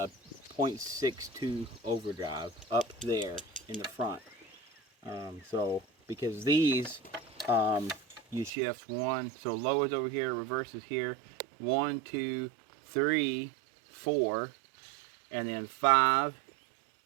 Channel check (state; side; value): drops out; left; at 8.5 s